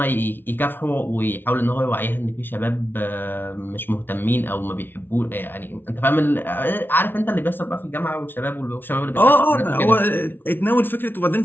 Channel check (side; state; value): right; late; 0.10 ms